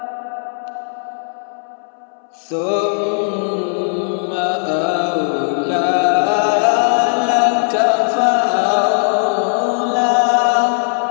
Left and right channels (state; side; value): silent; right; 68 dB below the other